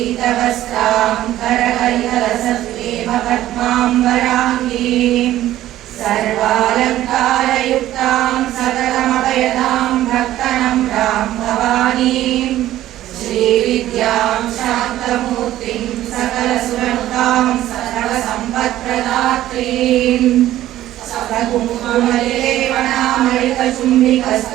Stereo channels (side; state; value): left; quieter; 13.8 dB